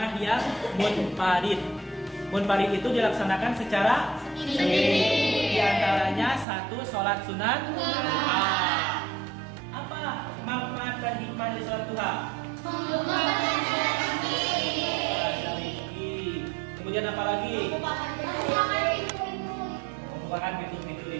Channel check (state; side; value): drops out; left; at 6.5 s